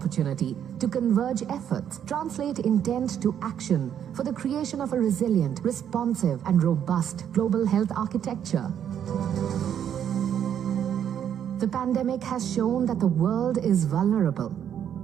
to converge efforts, translate intent to action for the creation of a resilient, responsive, and robust global health architecture. The pandemic has shown that the world is vulnerable.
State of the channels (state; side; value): quieter; left; 9.3 dB